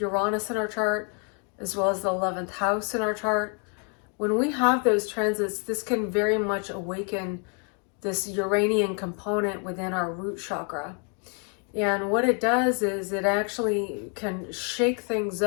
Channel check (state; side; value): quieter; right; 39.2 dB